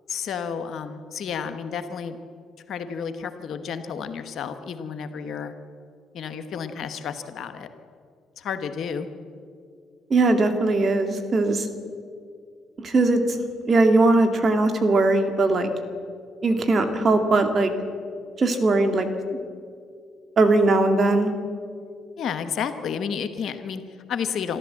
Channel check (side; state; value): both; normal; correlation 0.80